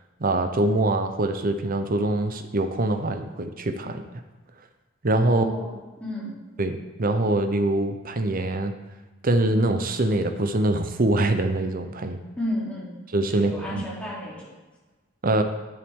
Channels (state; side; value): normal; both; correlation 0.52